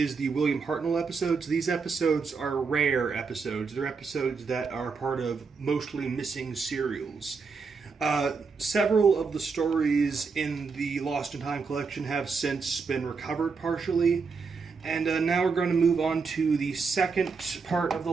the William Hartnell episodes. These episodes are rare episodes. They're episodes that are part of mostly missing serials. Several of the stories in the Lost in Time collection have since been recovered partially. And now we're going to move on to the second part of the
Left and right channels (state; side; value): quieter; left; 5.0 dB